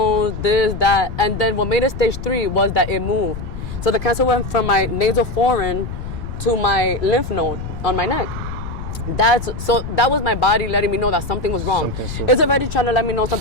this, that. And then what made it stage 3 was that it moved. So the cancer went from my nasal foramen to my lymph node on my neck. That was my body letting me know that something was wrong. It's already trying to let me know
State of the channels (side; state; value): left; noise; rumble, 8 dB below the sound